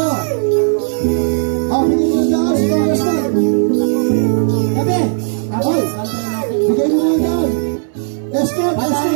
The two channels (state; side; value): silent; left; 69 dB below the other